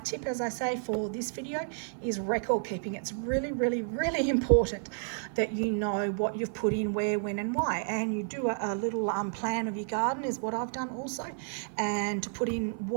tip, as I say, for this video, is record keeping. It's really, really, really important that you know what you've put in, where, when, and why. And you do a little plan of your garden is what I've done also, and to put in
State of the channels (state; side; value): silent; left; 57 dB below the other